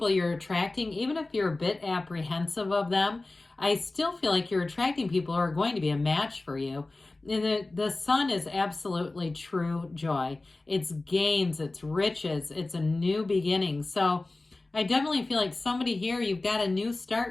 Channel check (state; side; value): quieter; right; 3.1 dB